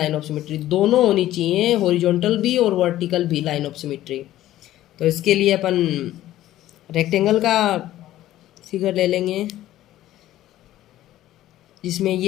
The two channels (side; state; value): right; quieter; 14.1 dB